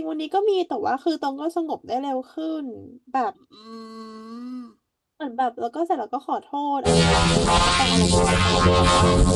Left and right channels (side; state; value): both; identical; correlation 1.00